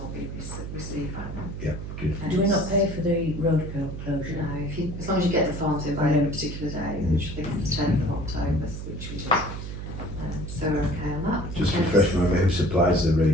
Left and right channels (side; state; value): right; noise; hum, 7 dB below the sound